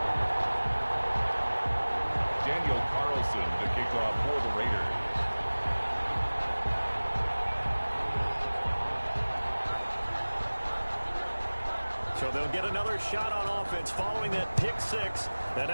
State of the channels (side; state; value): both; inverted; correlation -1.00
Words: Daniel Carlson to kick off for the Raiders. So they'll get another shot on offense following that pick 6. And